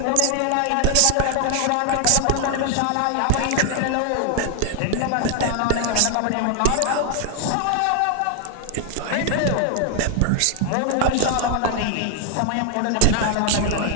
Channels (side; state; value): both; different; correlation 0.00